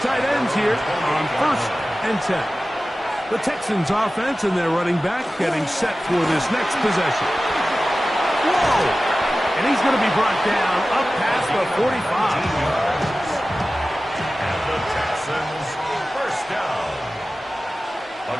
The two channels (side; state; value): both; normal; correlation 0.96